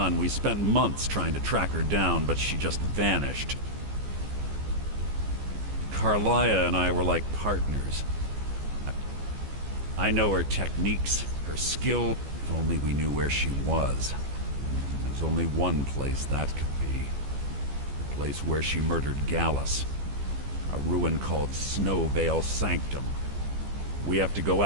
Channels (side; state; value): left; late; 14 ms